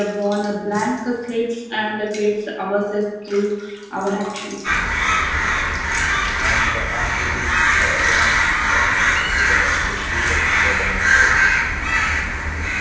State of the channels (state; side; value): identical; both; correlation 1.00